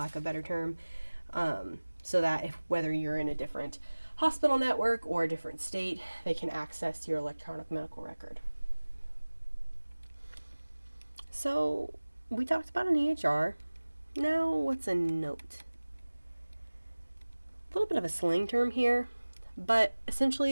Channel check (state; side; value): inverted; both; correlation -1.00